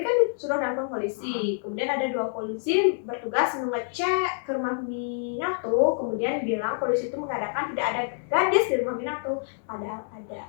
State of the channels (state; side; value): silent; right; digital silence